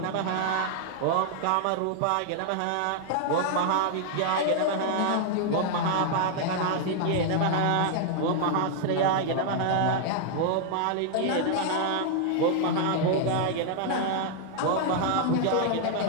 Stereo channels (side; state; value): both; different; correlation 0.00